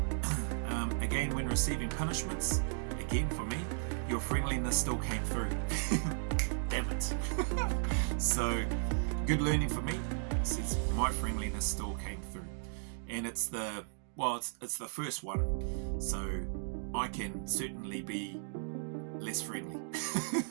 have. Again, when receiving punishments, again for me, your friendliness still came through. Damn it. So, good learning for me. It says my friendliness still came through. And it's the first one, so I can certainly be less friendly.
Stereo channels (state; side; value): silent; left; digital silence